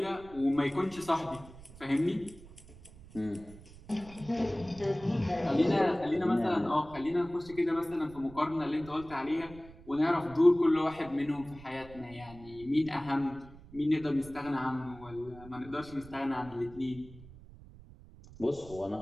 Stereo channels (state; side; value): noise; right; rumble, 19 dB below the sound